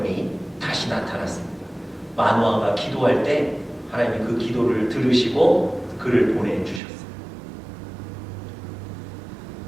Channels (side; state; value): left; drops out; at 6.8 s